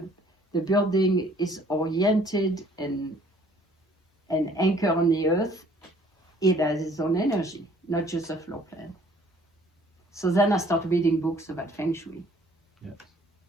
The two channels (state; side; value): normal; both; correlation 0.58